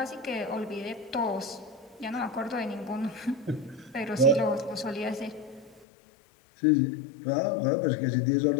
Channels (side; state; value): right; drops out; at 5.9 s